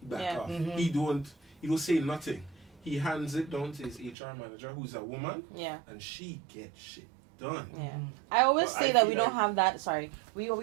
back Yeah. off. Mhm. He don't say nothing. He hands it down to his HR manager, who's a woman, Yeah. and she gets shit done. Yeah. I always Well, say I that feel we don't like- have that. Sorry, we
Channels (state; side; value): drops out; left; at 4.2 s